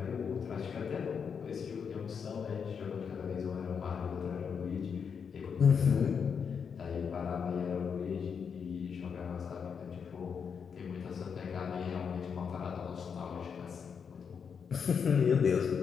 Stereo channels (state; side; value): quieter; right; 6.6 dB